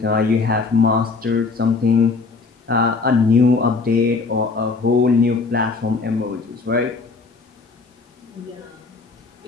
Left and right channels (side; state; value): right; quieter; 4.3 dB